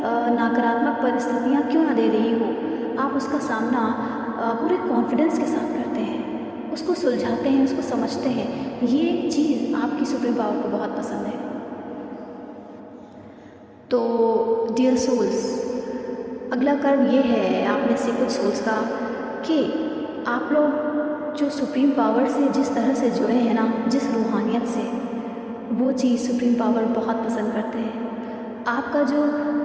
नकारात्मक परिस्थितियाँ क्यों ना दे रही हो, आप उसका सामना पूरे कॉन्फिडेंस के साथ करते हैं, उसको सुलझाते हैं, उसको समझते हैं। ये चीज़ आपकी सुप्रीम पावर को बहुत पसंद है। तो डियर सोल्स, अगला कर्म ये है आप में से कुछ सोल्स का कि आप लोग जो सुप्रीम पावर से जिस तरह से जुड़े हैं ना, जिस रूहानियत से, वो चीज़ सुप्रीम पावर बहुत पसंद करते हैं। आपका जो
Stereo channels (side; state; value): both; identical; correlation 1.00